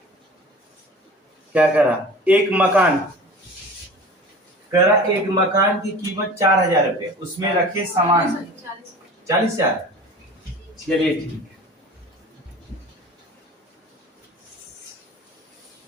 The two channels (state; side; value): normal; both; correlation 0.40